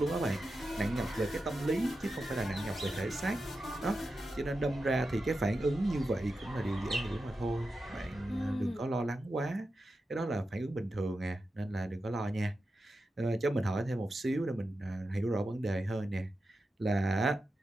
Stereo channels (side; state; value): both; normal; correlation 0.90